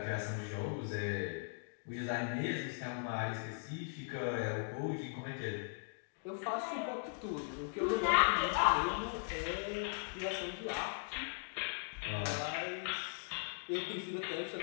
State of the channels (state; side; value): silent; right; digital silence